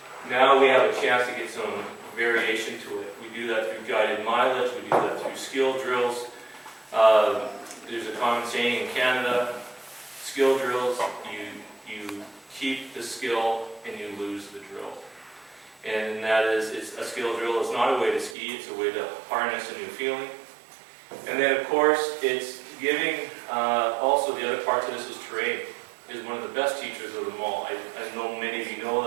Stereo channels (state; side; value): drops out; left; at 18.4 s